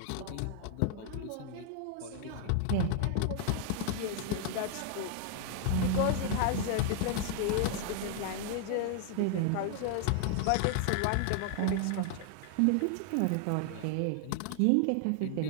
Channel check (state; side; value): different; both; correlation 0.00